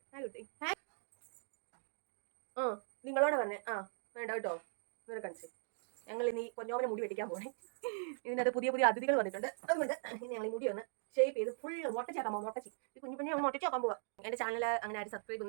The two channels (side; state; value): left; silent; digital silence